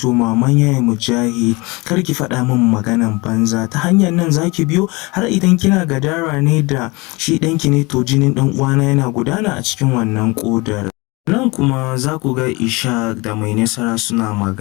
maman Yaya Mujahid, kar ki faɗa min maganan banza, ta hanyar nan zaki biyo, har idan kina gadara ne da shi ɗanki ne to jinin ɗan uwana yana gudana a cikin wannan ƙodar. Nan kuma za ku ga Ishaq da Mai Nasara suna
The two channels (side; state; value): right; quieter; 25.1 dB